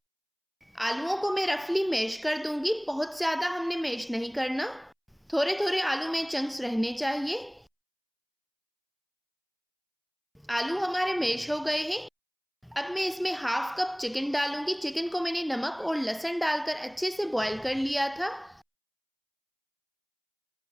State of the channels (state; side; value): identical; both; correlation 1.00